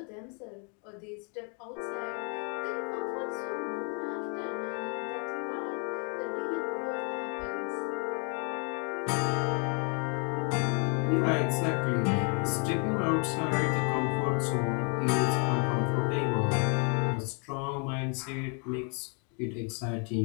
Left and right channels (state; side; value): quieter; right; 38.1 dB